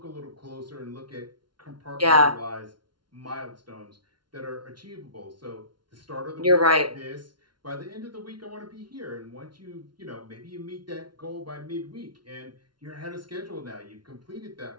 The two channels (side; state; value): left; late; 0.71 ms